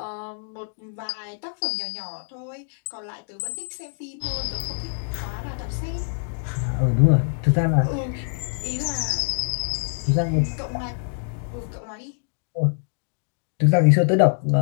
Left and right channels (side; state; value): right; silent; digital silence